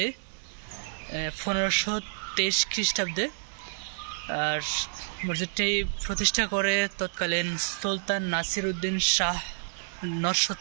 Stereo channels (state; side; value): silent; left; digital silence